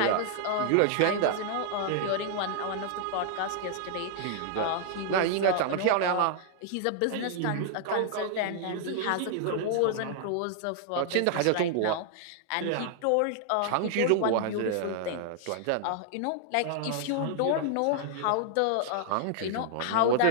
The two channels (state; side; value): different; both; correlation 0.00